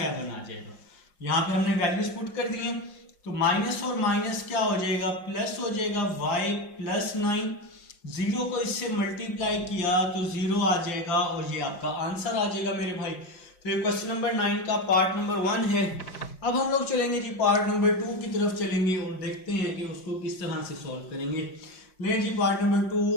आ जाएगा। यहां पे हमने वैल्यूज पुट कर दिए। तो माइनस और माइनस क्या हो जाएगा, प्लस हो जाएगा। y + 9, 0 को इससे मल्टीप्लाई किया तो 0 आ जाएगा और ये आपका आंसर आ जाएगा मेरे भाई। तो ये क्वेश्चन नंबर 9 का पार्ट नंबर 1 है। अब हम लोग चलेंगे जी पार्ट नंबर 2 की तरफ चलेंगे और देखते हैं कि उसको किस तरह से सॉल्व करेंगे। ले जी पार्ट नंबर 2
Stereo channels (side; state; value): right; late; 5.6 ms